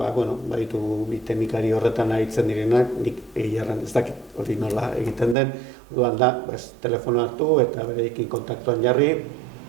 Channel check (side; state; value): left; drops out; at 5.4 s